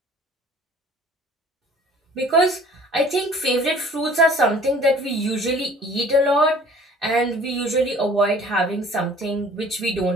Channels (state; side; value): normal; both; correlation 0.51